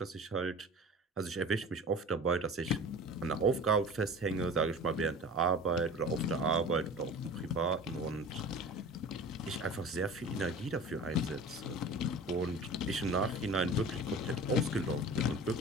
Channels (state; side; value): normal; both; correlation 0.38